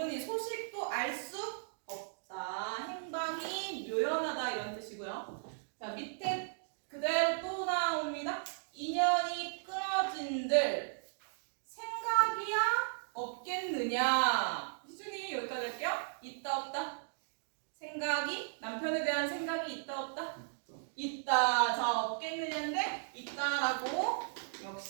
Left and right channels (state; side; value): silent; left; digital silence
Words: 소식도 알 수 없다. 행방이 묘연하다 이런 뜻이고요. 자 밑에 그대로 또 나옵니다. 인연이 끊어진들 생각이야 없겠느냐. 희준이 여기까지 할게요. 있다 없다? 생각이 남편에 대한 생각이 있다 없다? 있다. 자 없겠느냐인데 있다라고